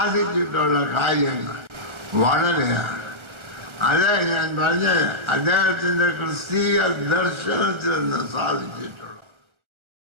കാര്യങ്ങൾ വളരെയാണ്. അതെ ഞാൻ പറഞ്ഞത്, അദ്ദേഹത്തിൻ്റെ ക്രിസ്തീയ ദർശനത്തിൽ നിന്ന് സാധിച്ചിട്ടുള്ളൂ.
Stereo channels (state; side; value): late; left; 1.3 ms